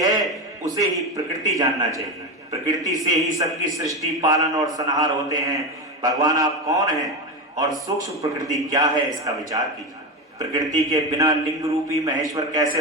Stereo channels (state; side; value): normal; both; correlation 0.17